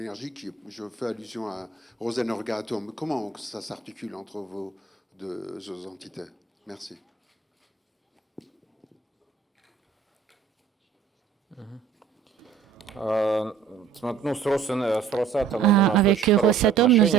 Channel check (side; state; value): left; quieter; 6.4 dB